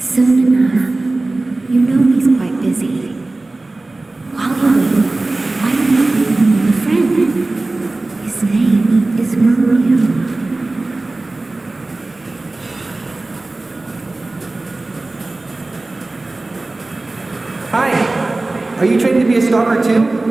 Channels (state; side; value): quieter; left; 3.1 dB